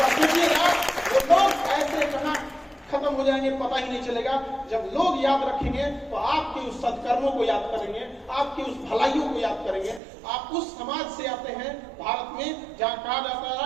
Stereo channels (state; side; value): drops out; left; at 10.0 s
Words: सोचिएगा वो लोग ऐसे कहां खत्म हो जाएंगे पता ही नहीं चलेगा। जब लोग याद रखेंगे तो आपके उस सत्कर्मों को याद करेंगे, आपके उस भलाइयों को याद करेंगे। आप उस समाज से आते हैं भारत में जहाँ कहा जाता